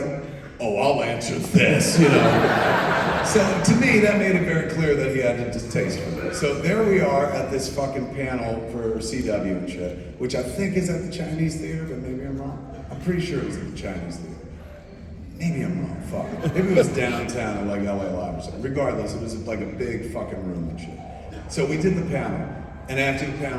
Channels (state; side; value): identical; both; correlation 1.00